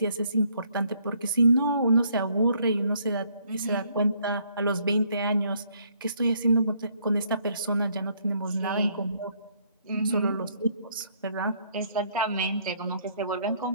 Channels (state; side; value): inverted; both; correlation -0.68